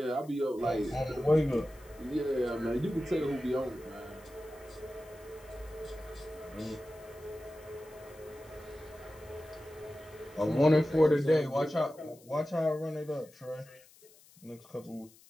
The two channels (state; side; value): noise; left; hiss, 25 dB below the sound